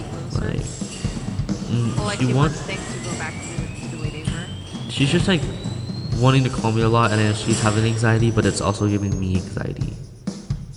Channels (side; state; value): both; identical; correlation 1.00